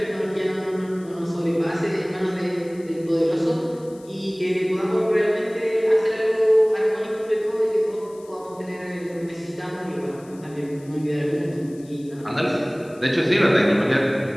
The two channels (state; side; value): noise; left; hiss, 26 dB below the sound